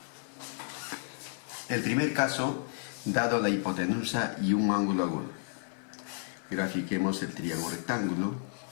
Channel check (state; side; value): silent; right; digital silence